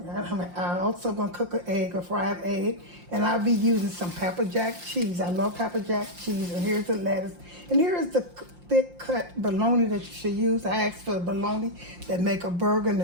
I'm also gonna cook an egg, a fried egg, and I'll be using some pepper jack cheese. I love pepper jack cheese, and here's the lettuce, and here is the thick cut bologna that you should use. I asked for the bologna that make a burger in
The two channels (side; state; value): left; late; 5.7 ms